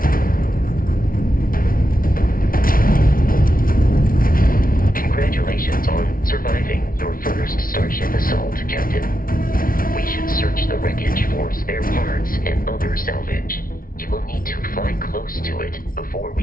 Congratulations on surviving your first Starship assault, Captain. We should search the wreckage for spare parts and other salvage. You will need to fly close to it before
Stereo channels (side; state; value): right; late; 0.42 ms